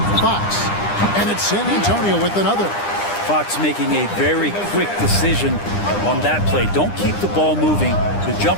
Fox. And it's San Antonio with another. Fox making a very quick decision on that play. Don't keep the ball moving. The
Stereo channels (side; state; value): right; late; 9.9 ms